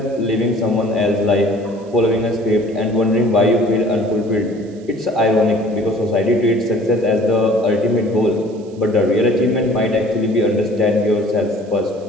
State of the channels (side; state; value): right; noise; hiss, 30 dB below the sound